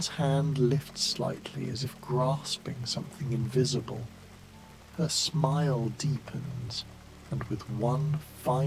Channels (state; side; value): identical; both; correlation 1.00